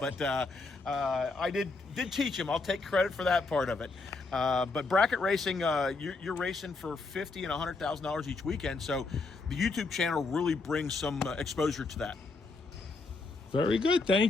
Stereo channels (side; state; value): right; quieter; 3.7 dB